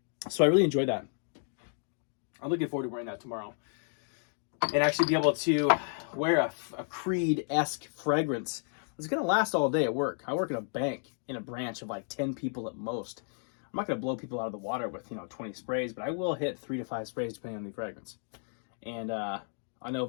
So I really enjoyed that. I'm looking forward to wearing that tomorrow and actually be able to wear a Creed-esque fragrance. It's going to last all day at work. I work in a bank in a branch of like 10 people at most. I'm not going to blow people out of the water with 20 sprays, but I will hit 3 to 5 sprays depending on the fragrance. And I know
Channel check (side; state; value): right; silent; 56 dB below the other